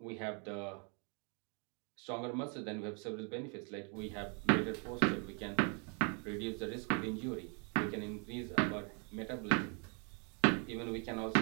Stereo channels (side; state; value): left; quieter; 37.1 dB